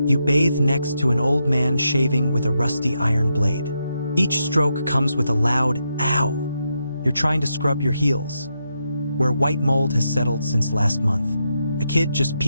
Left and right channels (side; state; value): both; inverted; correlation -0.83